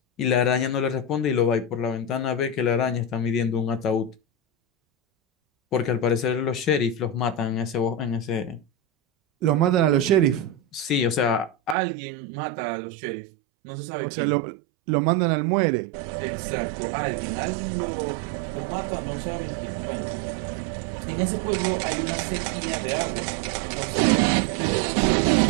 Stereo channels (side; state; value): left; drops out; at 11.8 s